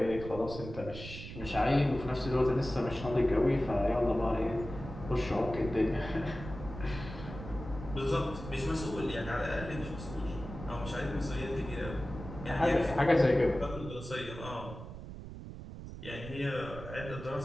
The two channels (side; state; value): right; noise; rumble, 11 dB below the sound